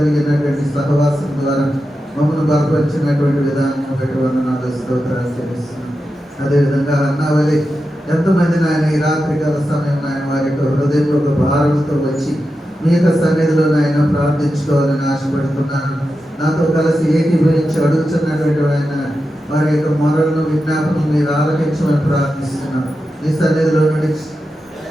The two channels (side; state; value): both; normal; correlation 0.90